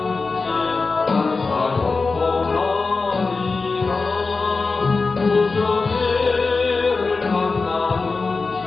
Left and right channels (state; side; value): quieter; right; 4.1 dB